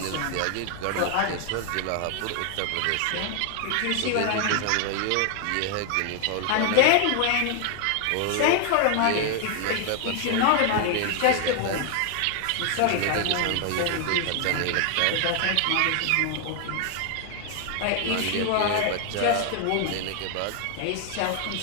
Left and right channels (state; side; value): different; both; correlation 0.00